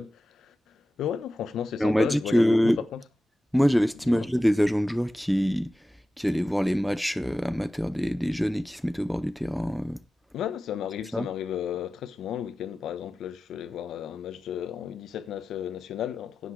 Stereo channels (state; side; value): normal; both; correlation 0.94